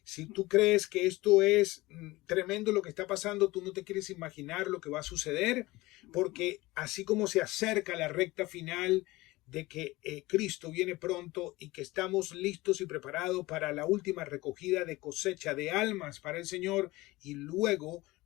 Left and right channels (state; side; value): quieter; right; 20.1 dB